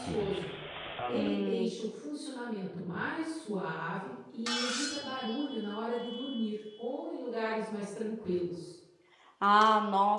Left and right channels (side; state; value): both; identical; correlation 1.00